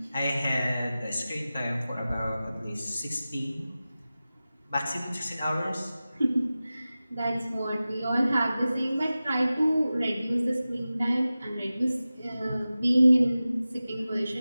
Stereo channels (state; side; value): inverted; both; correlation -0.95